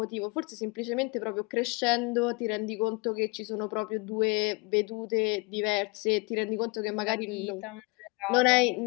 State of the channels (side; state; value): right; quieter; 28.1 dB